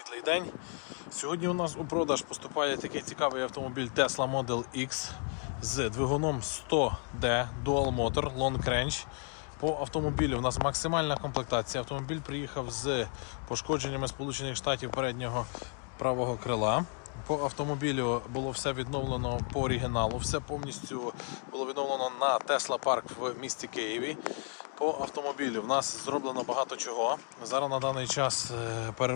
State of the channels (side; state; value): right; quieter; 37.4 dB